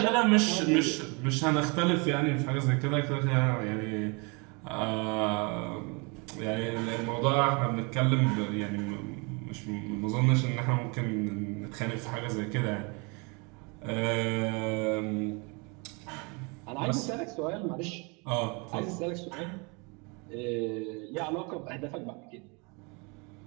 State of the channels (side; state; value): left; quieter; 30.9 dB